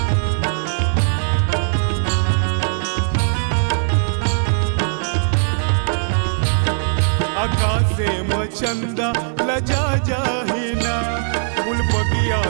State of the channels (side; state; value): left; silent; digital silence